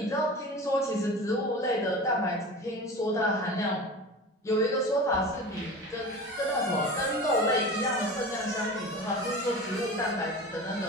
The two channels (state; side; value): normal; both; correlation 0.34